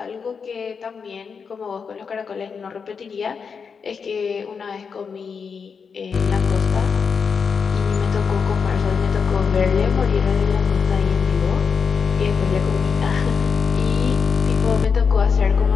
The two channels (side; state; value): right; quieter; 5.9 dB